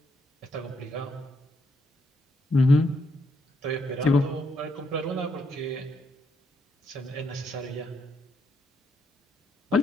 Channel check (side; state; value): both; normal; correlation 0.76